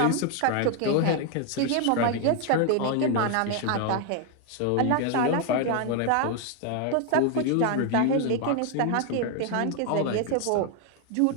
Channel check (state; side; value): different; both; correlation 0.01